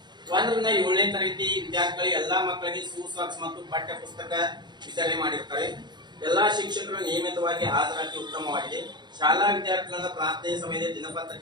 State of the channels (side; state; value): left; late; 0.21 ms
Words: 1 ರಿಂದ 7ನೇ ತರಗತಿ ವಿದ್ಯಾರ್ಥಿಗಳು ಎಲ್ಲಾ ಮಕ್ಕಳಿಗೆ ಶೂಸಾಕ್ಸ್ ಮತ್ತು ಪಠ್ಯ ಪುಸ್ತಕ ವಿತರಣೆ ಮಾಡಿರುತ್ತಾರೆ. ಎಲ್ಲಾ ಶಿಕ್ಷಕರು ನಿಯಮಿತವಾಗಿ ಹಾಜರಾತಿ ಉತ್ತಮವಾಗಿದೆ. ಶಾಲಾ ವಿದ್ಯಾರ್ಥಿಗಳಿಂದ ಪ್ರಾರ್ಥನೆ ಸಮಯದಲ್ಲಿ